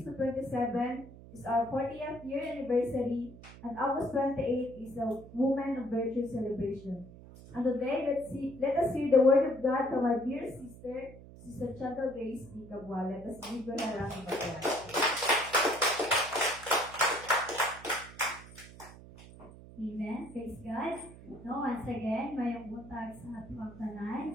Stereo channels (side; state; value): right; noise; hum, 18 dB below the sound